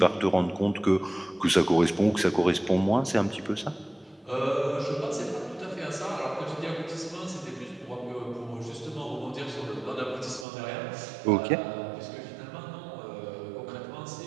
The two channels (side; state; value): left; drops out; at 10.5 s